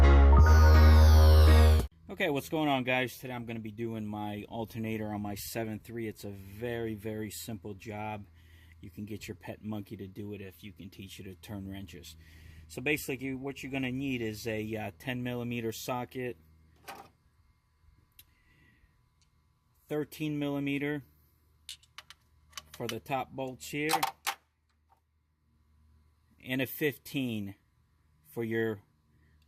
Okay, what's going on, guys? Today I'm going to be doing my alternator on my 7.3. It's a very, very simple job. You can get your pet monkey to do it if you can teach it to turn wrenches. So basically what you're going to need is a 10mm socket, 13mm for the top bolts here, and a 15 for your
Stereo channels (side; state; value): both; identical; correlation 1.00